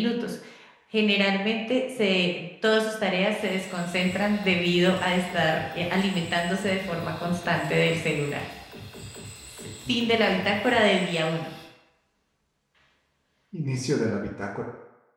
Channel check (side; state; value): both; identical; correlation 1.00